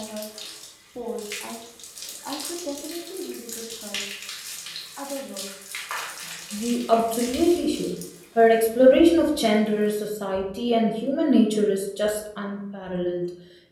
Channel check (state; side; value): identical; both; correlation 1.00